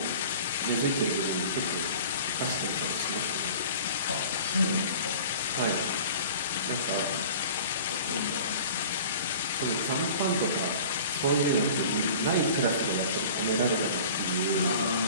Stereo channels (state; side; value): inverted; both; correlation -0.43